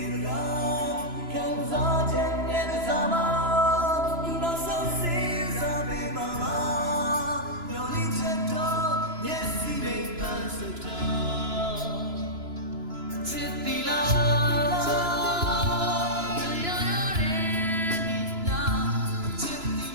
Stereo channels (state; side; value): late; left; 3.0 ms